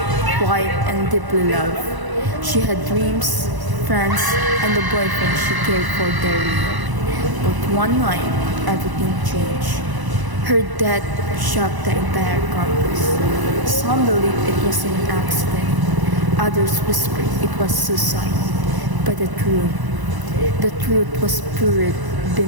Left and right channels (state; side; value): late; left; 1.0 ms